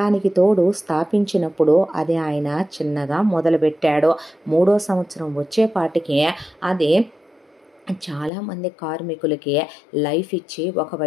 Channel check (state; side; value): drops out; right; at 8.3 s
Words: తోడు స్థాపించినప్పుడు అది ఆయన చిన్నగా మొదలుపెట్టాడు. 3వ సంవత్సరం వచ్చేపాటికి అది చాలామంది కార్మికులకి లైఫ్ ఇచ్చి